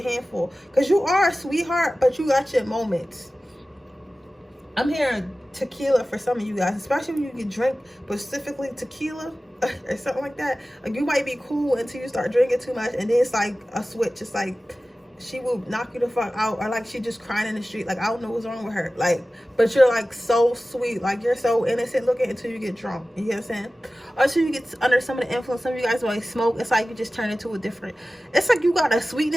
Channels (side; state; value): both; normal; correlation 0.96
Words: handful, because you are a sweetheart, but you got your moments. I'm hearing tequila for some of you guys, especially when you can drink specifically tequila or something like that. Like you might be cool until you start drinking too much, and then it's like a switch. It's like she will knock you the fuck out, or like she just crying in the street. Like I don't know what's wrong with her. Like, but you're like so sweet, like you're so innocent looking until you get drunk. You get what I'm saying? Or until you get under some of the influence. Some of you guys like smoke. It's like you just turn into a different. It's like you got a